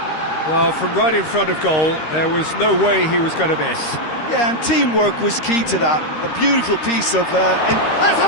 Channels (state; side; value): late; right; 13 ms